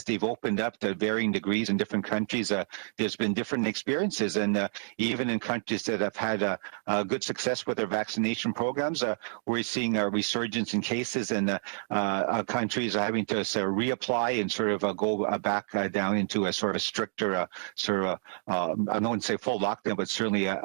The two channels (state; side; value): silent; left; digital silence